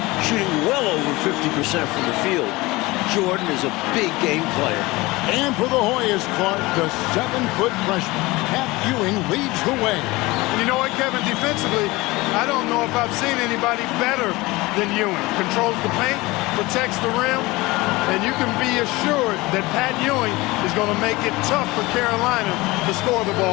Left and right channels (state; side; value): quieter; right; 21.4 dB